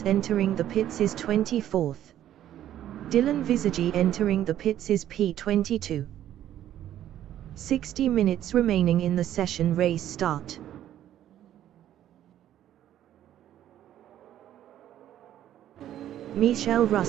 entering the pits is 24th. Dylan Visagi entering the pits is P22. 60 minutes remaining in the session. Race start. Michel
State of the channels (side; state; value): left; quieter; 11.7 dB